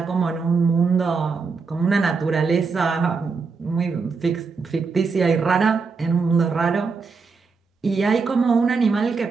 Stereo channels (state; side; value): quieter; left; 4.8 dB